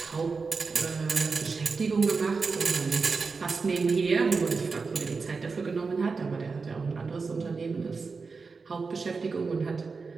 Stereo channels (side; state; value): left; quieter; 4.6 dB